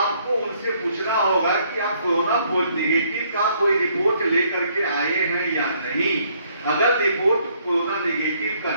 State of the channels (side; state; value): both; inverted; correlation -0.67